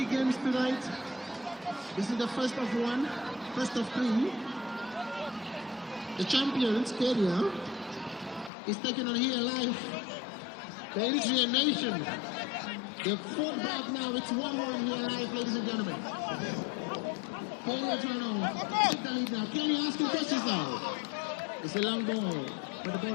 games tonight. This is the first of one, first of 3. The champions, Kenya, is taking on here live the Eritrean nation. They're fought back now. It's 1-1 here live, ladies and gentlemen. Kenya trying to take the lead now. Kenya asking questions now. It's a long ball, but the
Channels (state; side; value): drops out; right; at 8.5 s